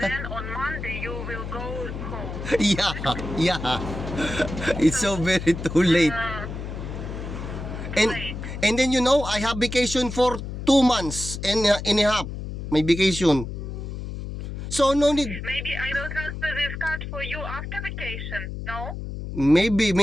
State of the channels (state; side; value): noise; left; hum, 7 dB below the sound